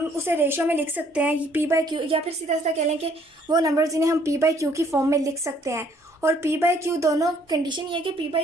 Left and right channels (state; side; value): normal; both; correlation 0.63